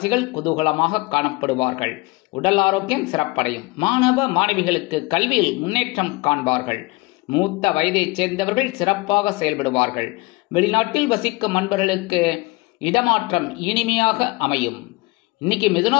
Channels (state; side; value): quieter; right; 23.7 dB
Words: குதூகலமாக காணப்படுவார்கள். உடல் ஆரோக்கியம் சிறப்படையும். மாணவ மாணவிகளுக்கு கல்வியில் முன்னேற்றம் காண்பார்கள். மூத்த வயதைச் சேர்ந்தவர்கள் சிறப்பாக செயல்படுவார்கள். வெளிநாட்டில் வசிக்கும் நண்பர்களுக்கு இடமாற்றம் இனிமையாக அமையும். இன்னைக்கு